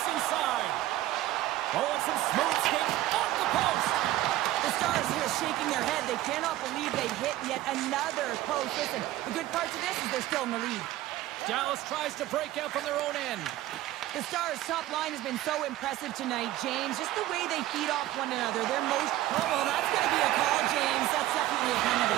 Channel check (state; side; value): quieter; left; 15.1 dB